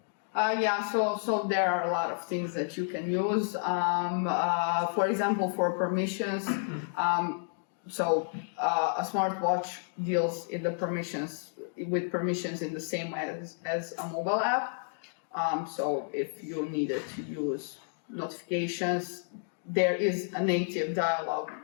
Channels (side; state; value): right; silent; digital silence